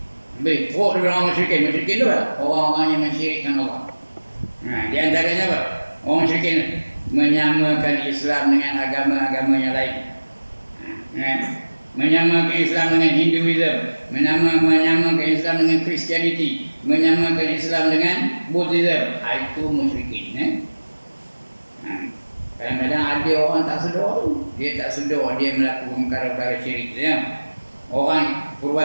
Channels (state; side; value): inverted; both; correlation -1.00